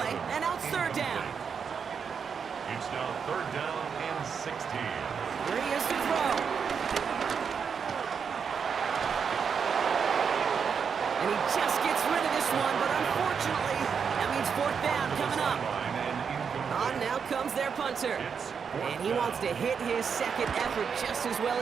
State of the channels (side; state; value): left; quieter; 6.5 dB